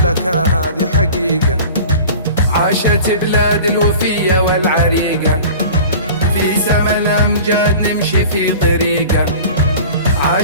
هذه حقيقة. عاشت بلاد الوفية والعريقة، في سما الأمجاد نمشي في طريقة.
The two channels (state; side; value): inverted; both; correlation -0.40